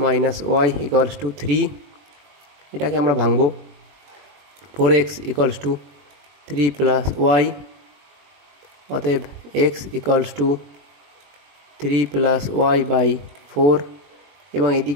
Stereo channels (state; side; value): late; left; 21 ms